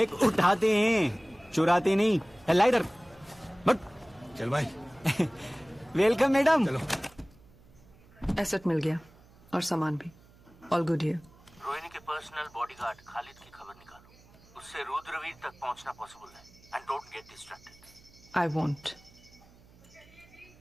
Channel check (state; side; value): noise; right; hum, 26 dB below the sound